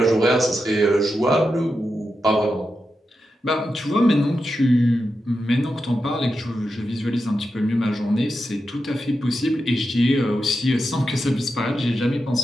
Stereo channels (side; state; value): both; normal; correlation 0.88